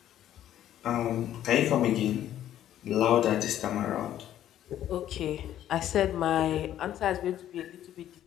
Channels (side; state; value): right; quieter; 11.8 dB